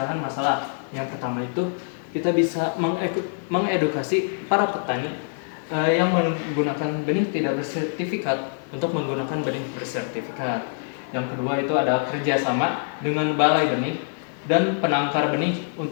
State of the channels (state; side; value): silent; right; 62 dB below the other